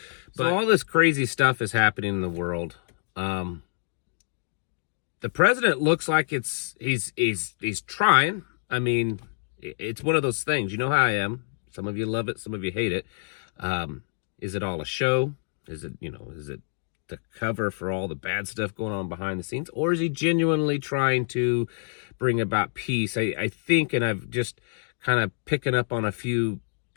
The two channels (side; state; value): right; silent; digital silence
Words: But all this crazy stuff is happening in the world. The president looks like he's trying. I mean, it's one of those things. You know how I am. Some of you love it, some of you hate it. Is it all a show? Is it the cover for all the bad stuff going on behind the scenes? Or is he genuinely trying to bring about peace? I think, and I've just kind of picking up on a few